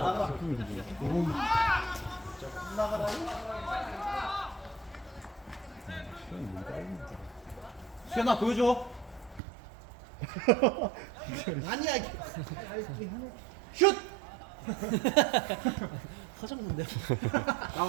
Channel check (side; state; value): left; drops out; at 9.4 s